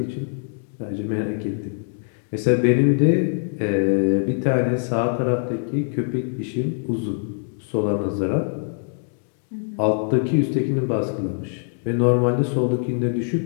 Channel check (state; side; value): silent; right; digital silence